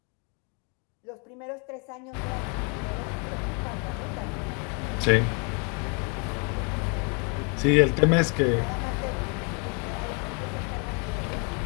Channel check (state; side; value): quieter; right; 35.8 dB